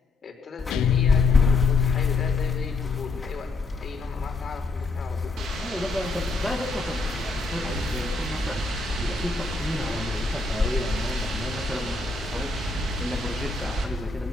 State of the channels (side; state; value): right; quieter; 3.4 dB